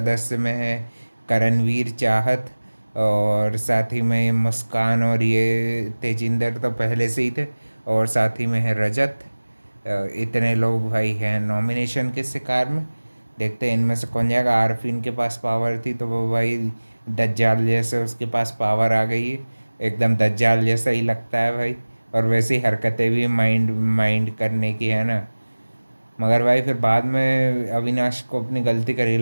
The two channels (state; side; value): inverted; both; correlation -1.00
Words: में है करणवीर, चाहत और साथ ही में मुस्कान और ये तेजिंदर तो पहले से ही थे। और साथ ही में है रजत। इतने लोग भाई हैं नॉमिनेशन के शिकार में। देखते हैं इनमें से कौन जाएगा। आरफीन के पास पावर थी तो वो भाई दज्जाल जैसे उसके पास पावर आ गई है। एकदम दज्जाल जैसा ही लगता है भाई। और वैसी हरकतें भी माइंड माइंड करने की है ना। मगर भाई फिर बाद में अविनाश को अपनी गलती का